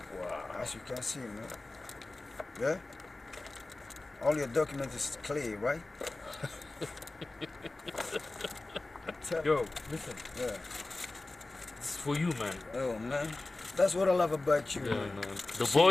Wow. As you can see, man. Yeah? All your documents is clear, right? Yo, listen. Yeah. This is for you, man. Oh, man. That's what I love about you, Yeah, man. no. The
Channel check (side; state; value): right; quieter; 3.0 dB